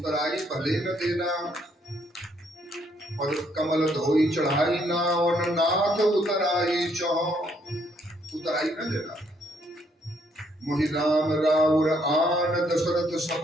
भले न देना, और कमल धोई चढ़ाई ना, और नाथ उतराई चहो, उतराई न देना। मोहि राम राउर आन दशरथ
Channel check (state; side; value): normal; both; correlation 0.70